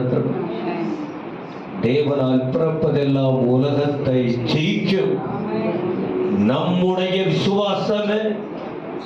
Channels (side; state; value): both; identical; correlation 1.00